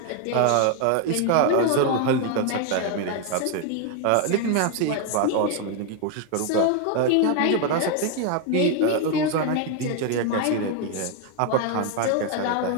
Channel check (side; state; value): both; different; correlation 0.01